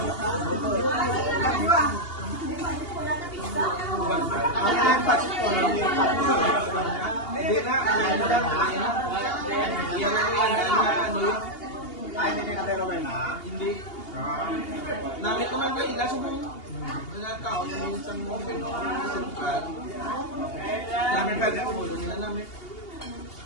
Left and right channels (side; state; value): right; late; 2.8 ms